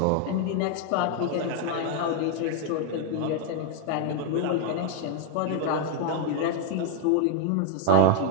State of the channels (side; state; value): both; different; correlation 0.01